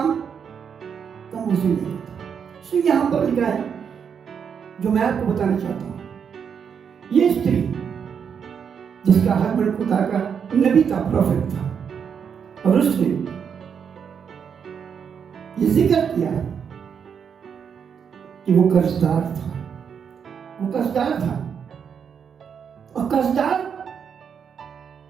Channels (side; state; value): left; quieter; 7.2 dB